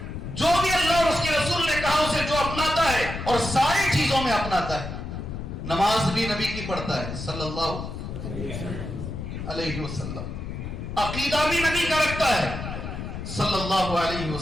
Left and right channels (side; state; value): left; noise; rumble, 7 dB below the sound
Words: جو بھی اللہ اور اس کے رسول نے کہا اسے جو اپناتا ہے اور ساری چیزوں میں اپناتا ہے. نماز بھی نبی کی پڑھتا ہے صلی اللہ علیہ وسلم، عقیدہ بھی نبی کا رکھتا ہے صلی اللہ علیہ